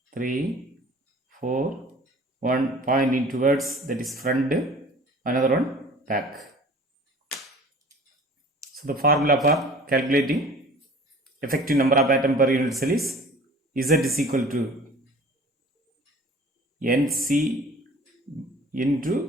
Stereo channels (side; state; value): both; normal; correlation 0.46